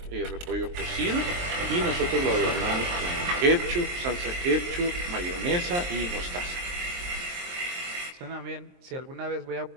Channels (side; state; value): left; late; 23 ms